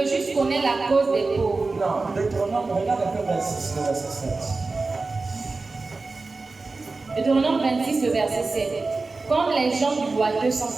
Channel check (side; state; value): left; quieter; 3.7 dB